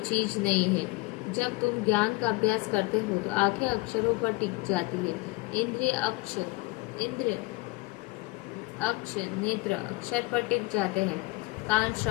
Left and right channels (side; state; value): right; quieter; 23.1 dB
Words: नहीं है। जब तुम ज्ञान का अभ्यास करते हो तो आंखें अक्षरों पर टिक जाती है। इंद्रिय अक्ष नेत्र अक्षर पर टिक जाते हैं। कान